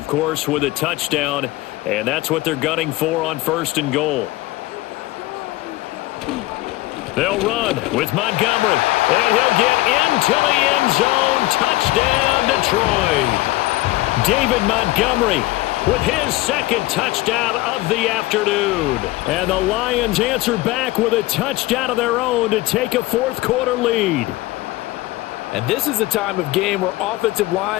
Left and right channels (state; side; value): quieter; right; 18.8 dB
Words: course, with a touchdown. And that's what they're gunning for on 1st and goal. They'll run with Montgomery. And he'll get into the end zone. Touchdown, Detroit. David Montgomery with his 2nd touchdown of the afternoon. And the Lions answer back with a touchdown of their own to take a fourth quarter lead. And this is a time of game where offensive